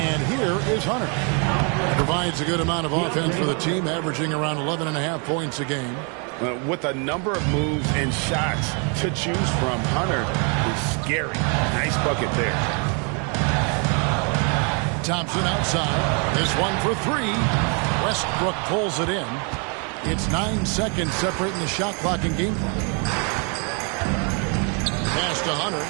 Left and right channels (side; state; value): left; quieter; 36.5 dB